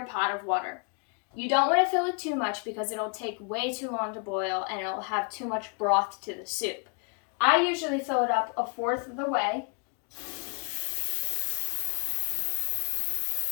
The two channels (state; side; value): quieter; right; 38.5 dB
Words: pot of water. You don't want to fill it too much because it'll take way too long to boil and it'll have too much broth to the soup. I usually fill it up 1/4 of the way.